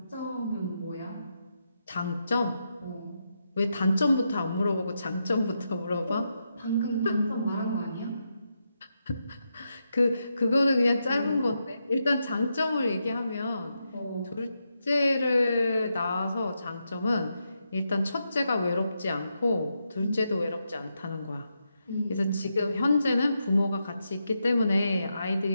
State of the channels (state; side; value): inverted; both; correlation -0.84